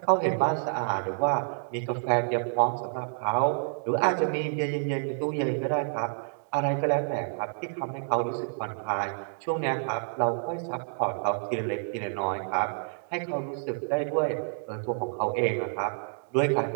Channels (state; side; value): silent; left; digital silence